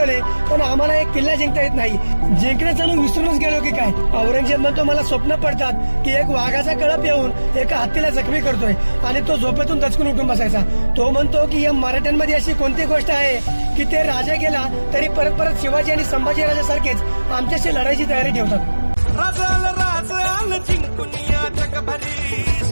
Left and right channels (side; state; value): both; inverted; correlation -1.00